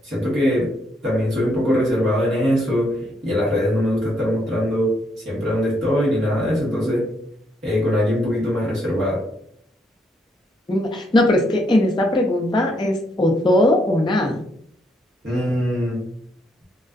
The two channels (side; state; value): both; normal; correlation 0.74